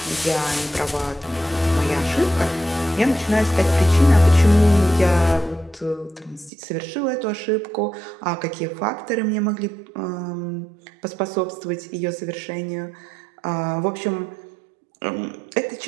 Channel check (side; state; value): left; drops out; at 6.5 s